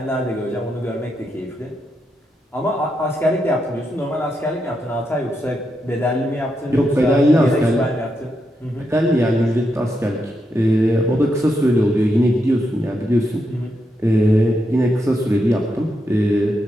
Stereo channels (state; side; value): normal; both; correlation 0.83